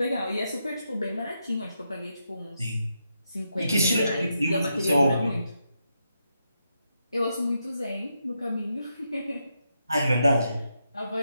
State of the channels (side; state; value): both; inverted; correlation -0.83